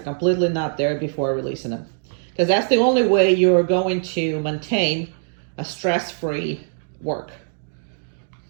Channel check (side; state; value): left; silent; digital silence